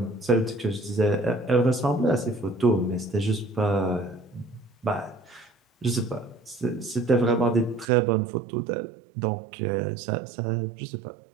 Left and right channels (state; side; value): drops out; left; at 7.9 s